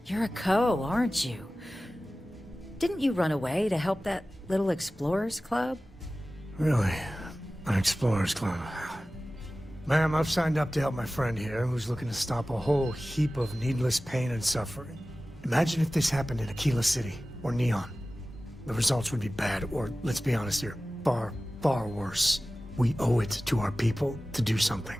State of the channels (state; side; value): normal; both; correlation 0.96